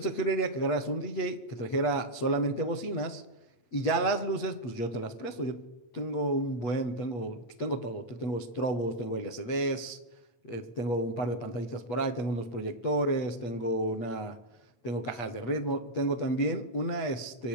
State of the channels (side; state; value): right; late; 8.3 ms